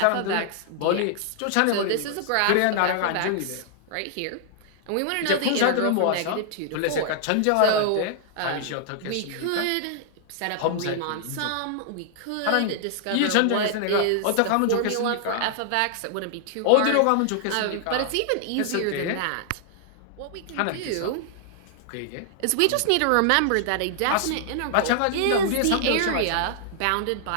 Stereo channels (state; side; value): different; both; correlation -0.01